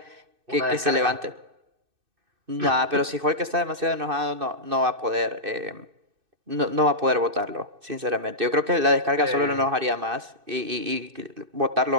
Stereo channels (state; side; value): late; left; 2.6 ms